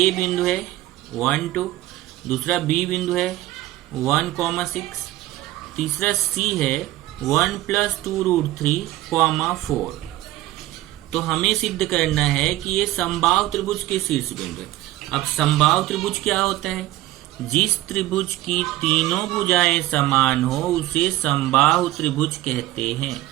बिंदु है 1 2, दूसरा B बिंदु है 1, 6, तीसरा C है 1 + 2√3, 4। तो हमें सिद्ध करना है कि ये समबाहु त्रिभुज के शीर्ष बिंदु है। अब समबाहु त्रिभुज क्या होता है, जिस त्रिभुज की तीनों भुजाएं समान हो उसे समबाहु त्रिभुज कहते हैं।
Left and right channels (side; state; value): left; quieter; 16.0 dB